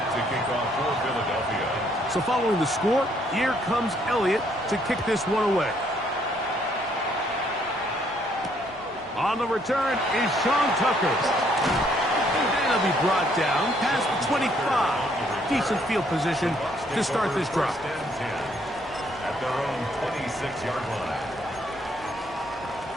to kick off for Philadelphia. So following the score, here comes Elliott to kick this one away. On the return is Sean Tucker. And he'll be brought down past the 25. Decent field position to start this drive. At their own 26-yard line.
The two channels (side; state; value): both; normal; correlation 0.68